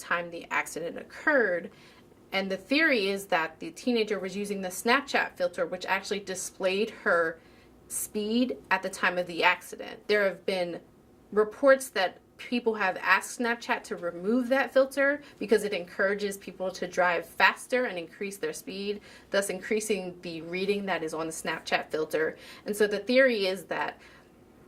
the accident occurred, and the theory is that the teenager was using the Snapchat filter, which actually displayed her speed at the time of the accident. There have been reports that people have asked Snapchat to remove that filter because it encourages people to drive faster and increase their speed, thus increasing the reading that is on the Snapchat filter. And so the theory is that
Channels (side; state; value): both; identical; correlation 1.00